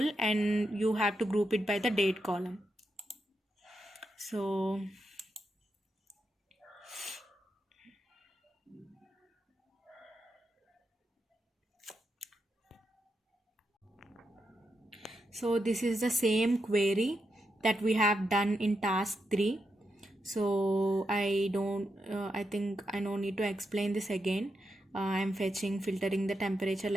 and you have to group it by the date column. So this is the same query that we have done in task 3. So I think I don't need to explain this again. I'm filtering the temperature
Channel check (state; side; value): normal; both; correlation 0.84